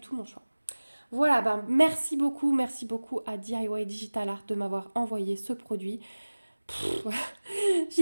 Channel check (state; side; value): inverted; both; correlation -1.00